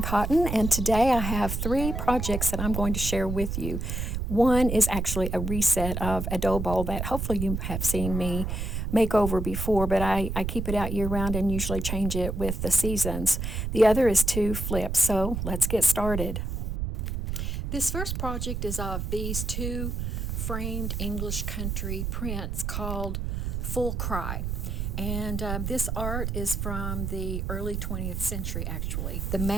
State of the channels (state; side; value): noise; right; rumble, 3 dB below the sound